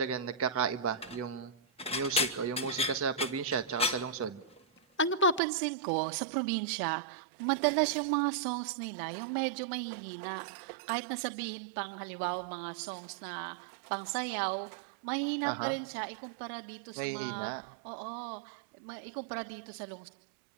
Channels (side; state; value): left; drops out; at 5.4 s